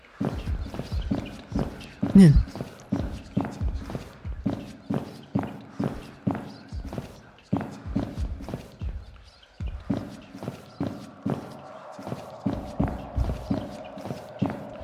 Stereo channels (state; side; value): identical; both; correlation 1.00